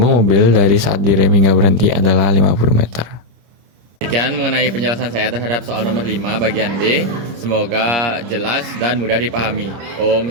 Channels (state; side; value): late; left; 25 ms